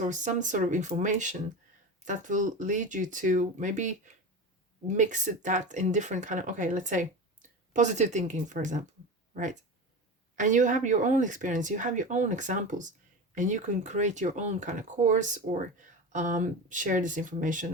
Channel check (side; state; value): both; normal; correlation 0.27